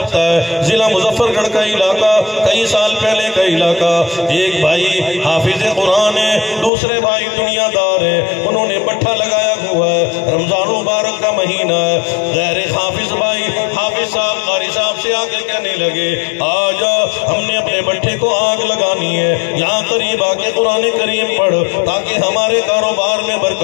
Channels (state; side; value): drops out; right; at 6.7 s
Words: ہے, ضلع مظفر گڑھ کا علاقہ, کئی سال پہلے کا علاقہ. ایک بھائی حافظ قرآن ہے, دوسرے بھائی دنیا دار ہے, انہوں نے بٹھا لگایا ہوا ہے, رمضان مبارک کا مہینہ ہے. غیر حافظ بھائی حافظ صاحب قاری صاحب سے آ کے کہنے لگے آجا ہم نے اپنے بٹھے کو آگ لگانی ہے، یہاں قریب آ کے قرآن کریم پڑھ تاکہ ہمارے کاروبار میں